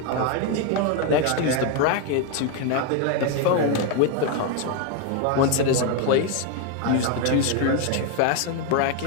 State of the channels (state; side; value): different; both; correlation 0.01